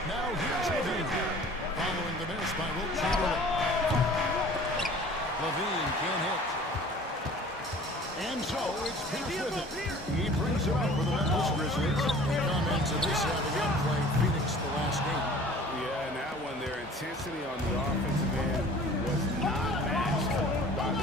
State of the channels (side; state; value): both; normal; correlation 0.47